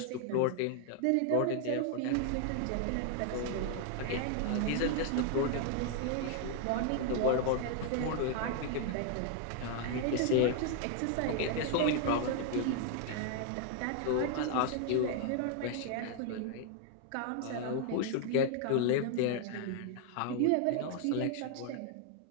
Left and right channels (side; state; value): both; different; correlation 0.00